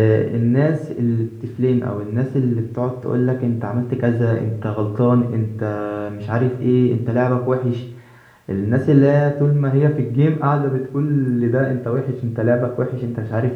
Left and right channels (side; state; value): both; identical; correlation 1.00